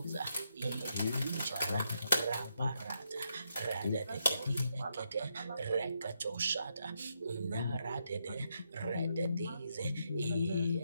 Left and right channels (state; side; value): inverted; both; correlation -0.79